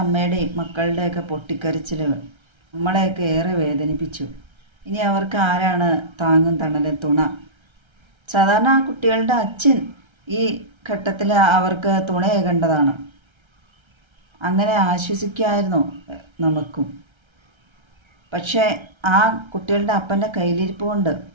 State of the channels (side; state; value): left; late; 1.3 ms